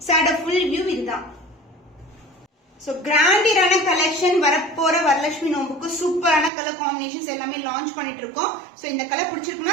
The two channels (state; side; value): drops out; left; at 6.5 s